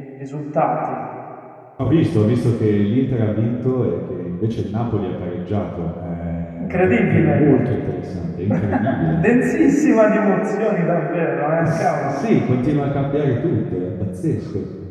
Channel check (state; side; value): identical; both; correlation 1.00